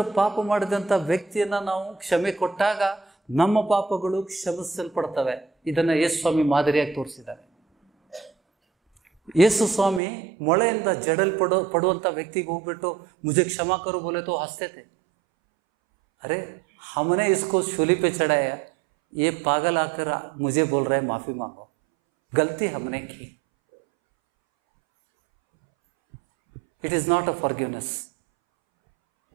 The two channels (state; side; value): drops out; left; at 10.0 s